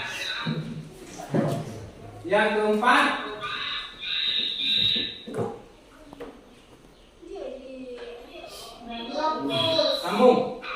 yang keempat. Sambung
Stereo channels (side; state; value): both; identical; correlation 1.00